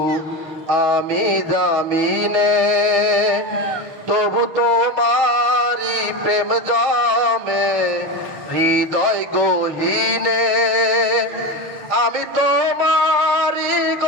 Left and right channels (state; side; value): late; left; 6.5 ms